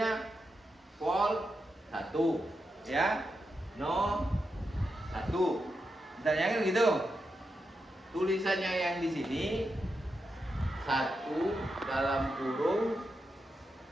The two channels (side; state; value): both; normal; correlation 0.87